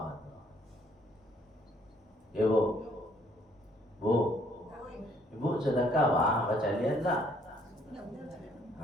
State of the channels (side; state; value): both; normal; correlation 0.65